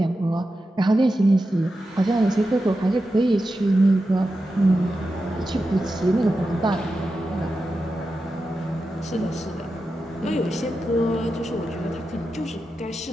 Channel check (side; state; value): both; normal; correlation 0.90